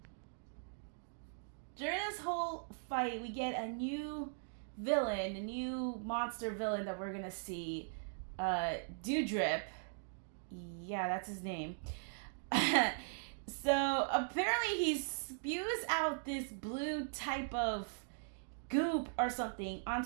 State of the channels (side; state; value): left; silent; digital silence